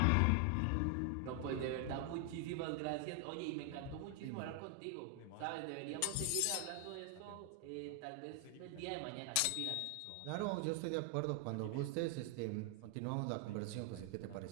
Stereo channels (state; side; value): different; both; correlation 0.00